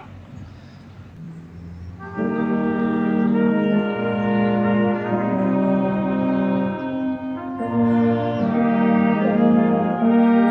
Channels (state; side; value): identical; both; correlation 1.00